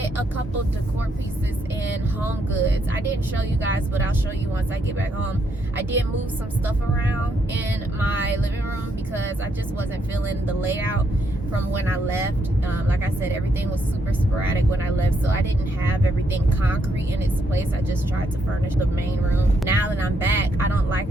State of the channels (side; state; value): both; normal; correlation 0.76